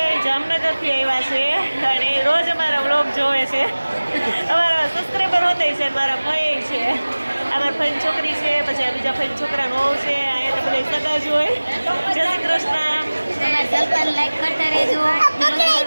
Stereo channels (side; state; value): both; inverted; correlation -1.00